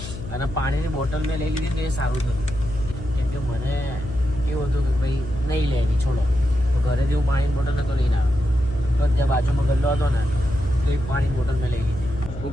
અને પાણીની બોટલ મેં લઈ લીધી તો એ સારું થયું, કેમ કે મને એવું હતું કે ભાઈ નહીં લેવી, છોડો. તો ઘરેથી હું પાણીની બોટલ નહોતો લઈને આવ્યો. તો ત્યાં બાજુમાં ગલ્લો હતો ને તો એક પાણીની બોટલ મેં લઈ લીધી. હું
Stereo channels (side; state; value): left; noise; hum, 10 dB below the sound